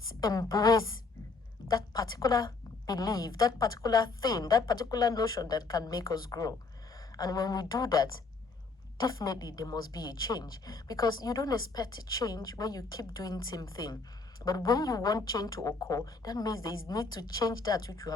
embrace that particular belief, that particular thing, that particular notion that can make us grow. And when we do that, definitely there must be a change, because you don't expect a change when you keep doing the same thing. But when you want change to occur, that means there is need to change that which you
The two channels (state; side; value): quieter; right; 4.0 dB